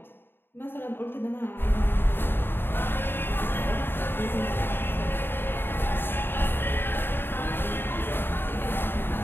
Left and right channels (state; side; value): late; right; 0.10 ms